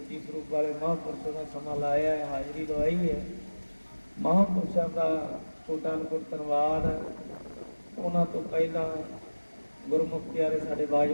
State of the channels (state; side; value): inverted; both; correlation -1.00